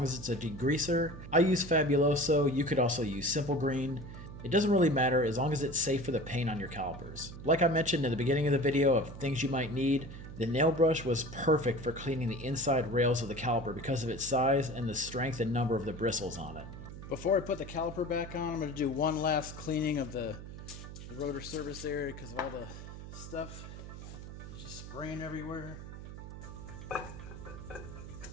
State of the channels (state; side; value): noise; right; hum, 11 dB below the sound